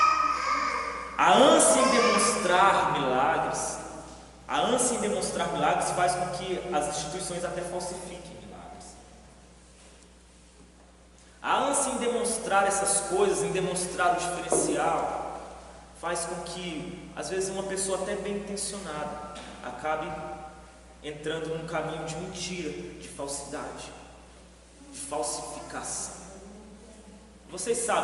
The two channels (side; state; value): both; identical; correlation 1.00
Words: A ânsia em demonstrar milagres faz com que as instituições até falsifiquem milagres. A ânsia em demonstrar essas coisas, em demonstrar o diferencial, faz com que, às vezes, uma pessoa até bem intencionada acabe entrando num caminho de mentira, de falsidade, de falsificação. Vocês